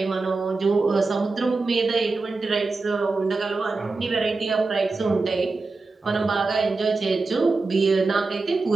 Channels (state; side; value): quieter; left; 3.8 dB